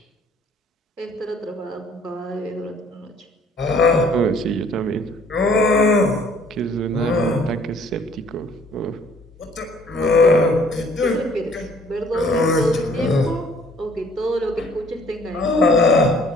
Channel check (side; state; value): both; normal; correlation 0.57